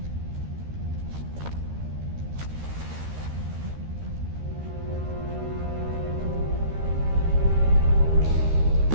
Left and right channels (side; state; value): left; late; 13 ms